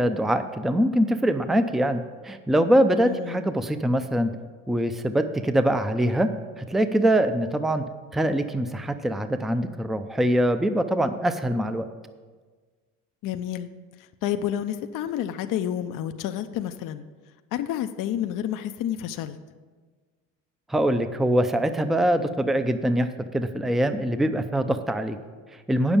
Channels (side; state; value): both; normal; correlation 0.80